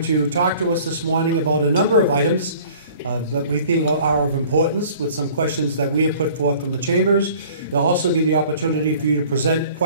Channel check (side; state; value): both; inverted; correlation -0.50